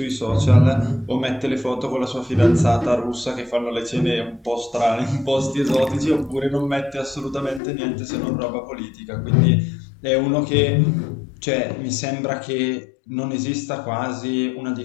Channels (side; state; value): right; drops out; at 7.6 s